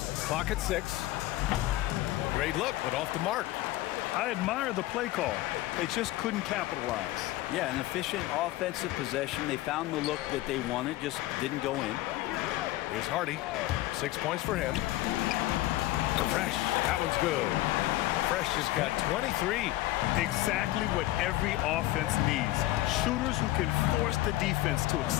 Clock at 6. Great look, but off the mark. I admire the play call. They just couldn't capitalize. Yeah, an efficient offensive possession. They found the look that they wanted, just didn't go in. Here's Hardy. 6 points for him. Fresh. That one's good. Fresh has got 23. Exactly what every offense needs. Shooters who can force the defense to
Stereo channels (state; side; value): quieter; right; 16.6 dB